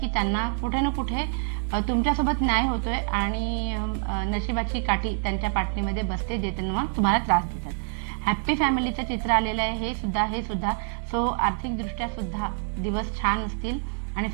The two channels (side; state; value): left; silent; 61 dB below the other